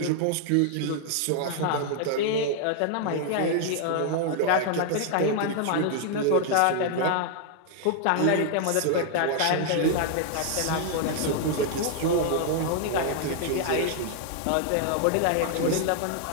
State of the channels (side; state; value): both; different; correlation 0.00